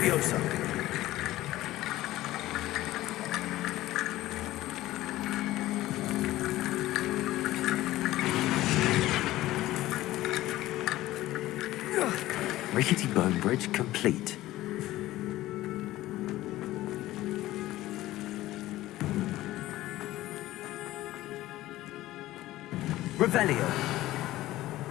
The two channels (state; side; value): quieter; right; 16.1 dB